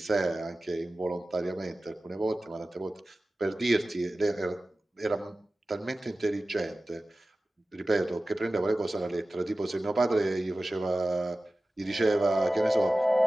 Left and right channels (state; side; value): normal; both; correlation 0.96